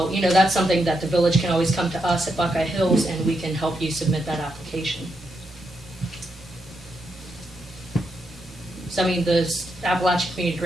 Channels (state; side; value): normal; both; correlation 0.82